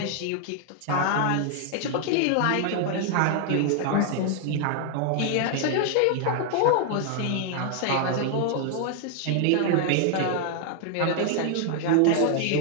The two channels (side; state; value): both; different; correlation 0.00